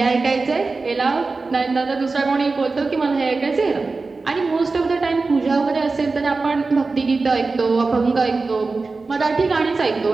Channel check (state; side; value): quieter; left; 3.9 dB